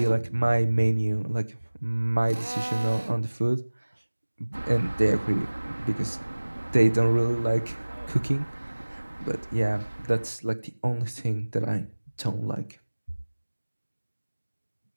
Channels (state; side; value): inverted; both; correlation -1.00